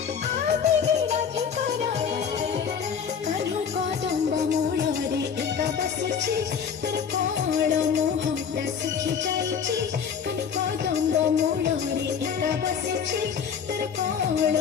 आवे राधिका रानी कान्हो कदम्ब मूଳରେ एका बसिଛି तर कोण मोहटा सुखी जाइछि कान्हो कदम्ब मूଳରେ एका बसिଛି तर कोण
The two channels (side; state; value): right; quieter; 7.0 dB